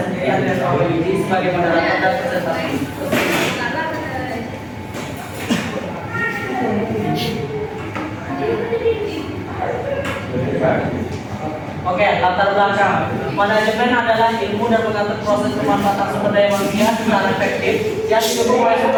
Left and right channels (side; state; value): both; identical; correlation 1.00